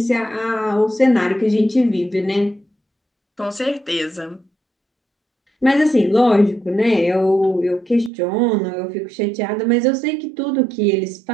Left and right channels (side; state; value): left; drops out; at 8.1 s